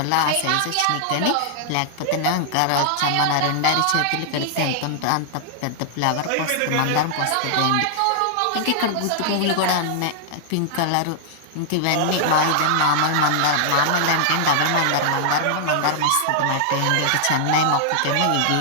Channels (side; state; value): both; different; correlation -0.01